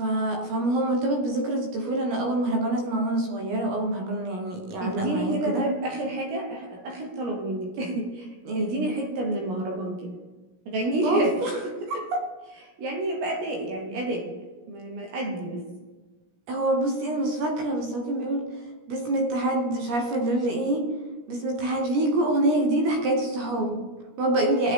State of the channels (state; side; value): late; left; 17 ms